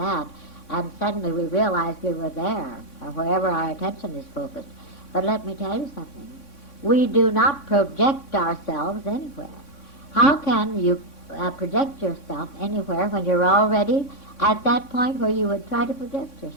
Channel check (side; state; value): right; late; 3.6 ms